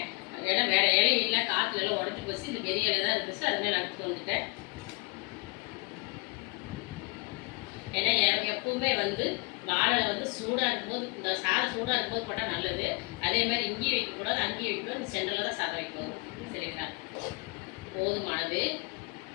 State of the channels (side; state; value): right; quieter; 30.4 dB